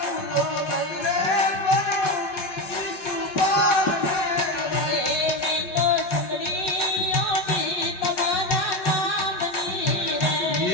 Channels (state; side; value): late; right; 5.4 ms